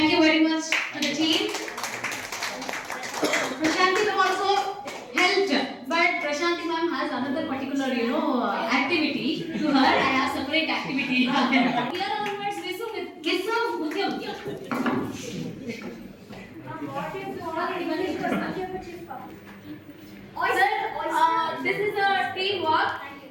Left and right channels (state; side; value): identical; both; correlation 1.00